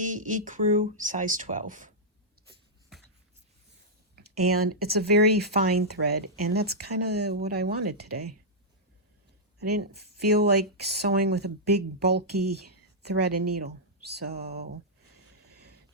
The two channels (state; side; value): normal; both; correlation -0.09